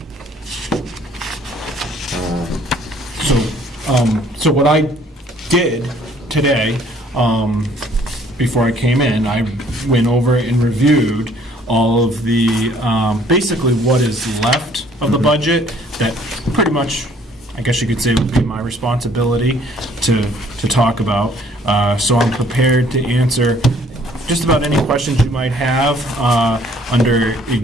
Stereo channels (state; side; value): normal; both; correlation 0.60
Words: So what I did today, before I came in, I went over and reviewed all of the, basically what is left of the budget that pretty much, I guess you could say, would be my responsibility to talk about. So I'm prepared to answer just about any questions you might have under